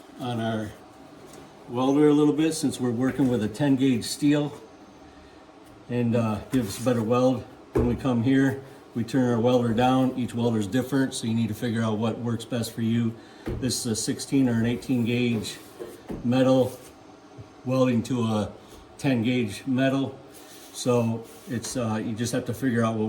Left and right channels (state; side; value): identical; both; correlation 1.00